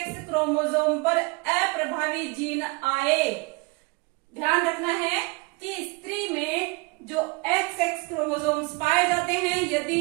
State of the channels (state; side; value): quieter; left; 27.9 dB